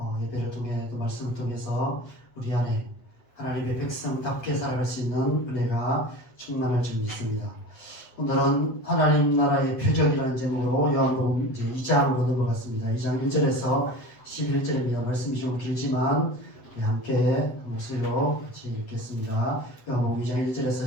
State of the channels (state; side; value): late; right; 8.0 ms